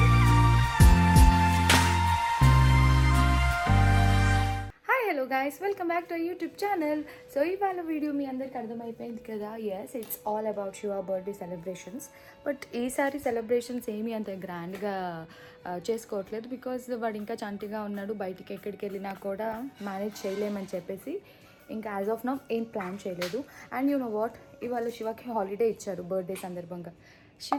welcome back to our YouTube channel. So ఇవాళ video మీ అందరికి అర్థమైపోయింది కదా. yes, it's all about Shiva birthday celebrations. But ఈసారి celebrations ఏమీ అంత గ్రాండ్గా చేసుకోవట్లేదు బికాజ్ వాడు ఇంకా చంటిగా ఉన్నాడు. బయటికి ఎక్కడికి వెళ్ళినా కూడా మేనేజ్ చేయలేమని చెప్పేసి ఇంకా యాజ్ ఆఫ్ నౌ ఏం ప్లాన్ చేయలేదు. అండ్ యూ నో వాట్, ఇవాళ శివకి హాలిడే ఇచ్చారు బర్త్డే సందర్భంగా.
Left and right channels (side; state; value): both; identical; correlation 1.00